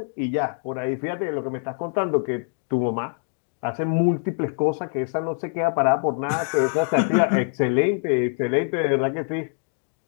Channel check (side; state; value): right; silent; digital silence